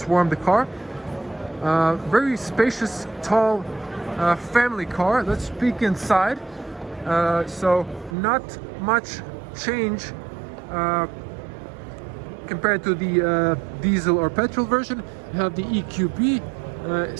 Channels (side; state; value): left; drops out; at 8.2 s